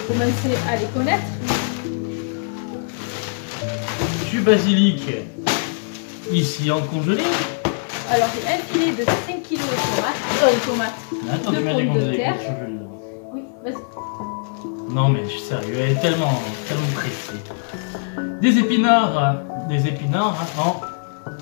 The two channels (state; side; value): silent; right; digital silence